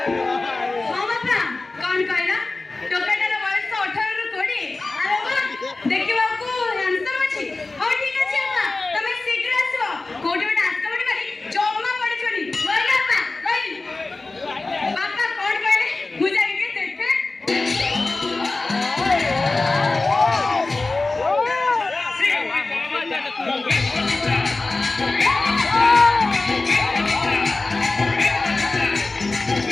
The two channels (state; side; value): quieter; right; 3.4 dB